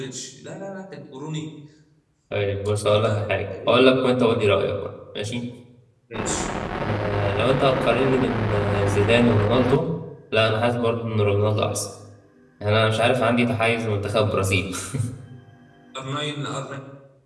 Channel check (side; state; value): both; identical; correlation 1.00